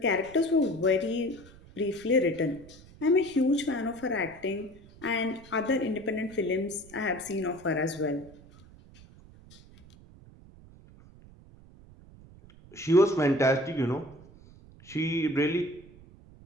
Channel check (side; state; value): right; noise; rumble, 22 dB below the sound